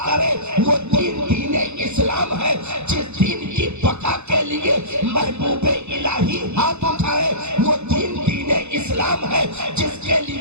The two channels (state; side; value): late; left; 0.81 ms